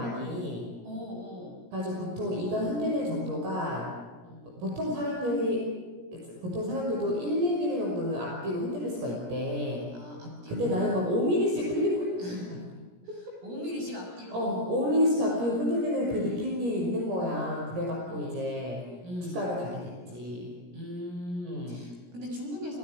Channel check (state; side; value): late; left; 17 ms